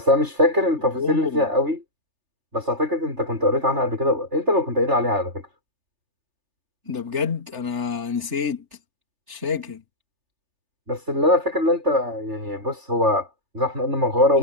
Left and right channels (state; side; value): late; left; 3.3 ms